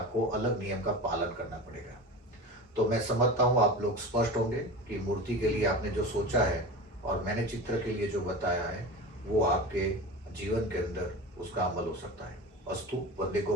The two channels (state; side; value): normal; both; correlation 0.30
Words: अलग नियम का पालन करना पड़ेगा। तो मैं समझता हूँ आप लोग स्पष्ट होंगे कि मूर्ति के लिए आपने जो सोचा है और मैंने चित्र के लिए जो बताया है वो आपके जीवन के अंदर उसका अमल हो सकता है। अस्तु। वंदे गो